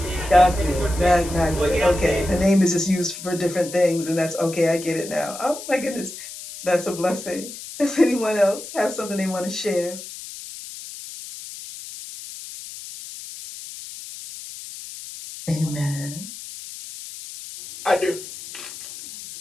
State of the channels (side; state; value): left; noise; hiss, 12 dB below the sound